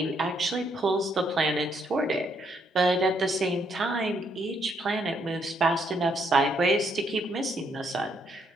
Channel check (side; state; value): both; normal; correlation 0.73